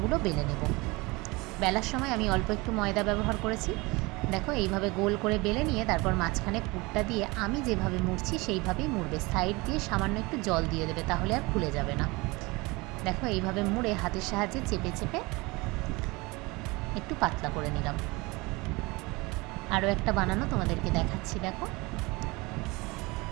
বেলে নেব। বেলার সময় আমি অল্প একটু ময়দা ব্যবহার করেছি। দেখো এইভাবে গোল করে বেলে নিয়ে তারপর মাঝখানে পুরটা দিয়ে আমি যেভাবে মুড়ছি সেইভাবেই মুড়বে। সাইড দিয়ে সামান্য একটু জল দিয়ে দেবে, তাহলে আর খুলে যাবে না। দেখো এইভাবে মুড়ে হাতের সাহায্যে চেপে চেপে একটু পাতলা করে নিলাম। আরও একটা বানানো তোমাদেরকে দেখাচ্ছি। দেখো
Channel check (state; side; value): quieter; left; 24.2 dB